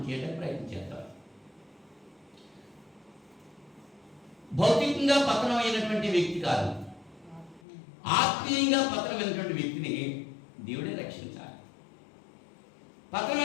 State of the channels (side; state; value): right; drops out; at 7.6 s